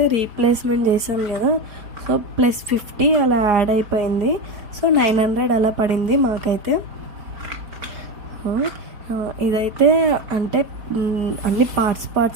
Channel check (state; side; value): late; left; 4.5 ms